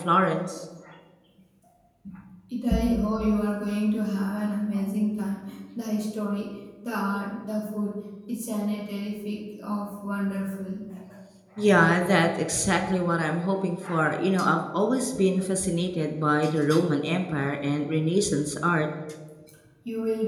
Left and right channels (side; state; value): both; identical; correlation 1.00